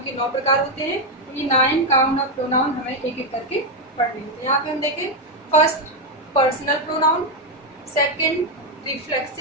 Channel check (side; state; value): both; normal; correlation 0.04